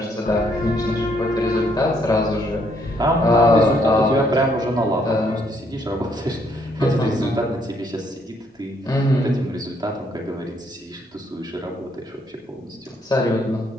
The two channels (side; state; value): both; normal; correlation 0.70